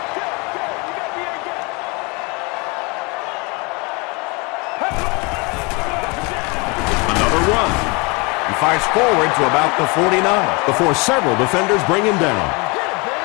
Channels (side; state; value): right; quieter; 28.8 dB